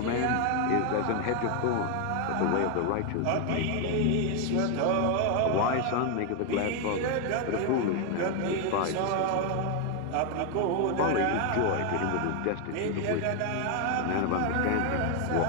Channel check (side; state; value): both; different; correlation 0.01